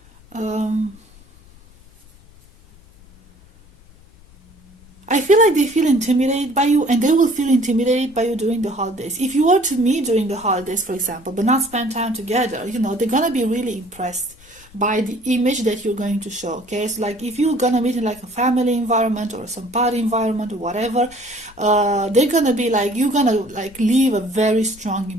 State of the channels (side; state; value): left; noise; rumble, 25 dB below the sound